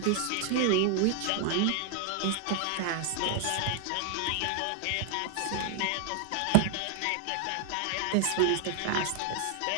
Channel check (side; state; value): both; different; correlation 0.00